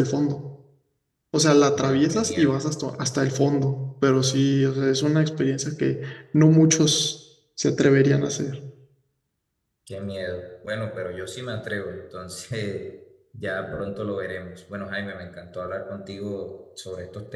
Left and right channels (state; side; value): identical; both; correlation 1.00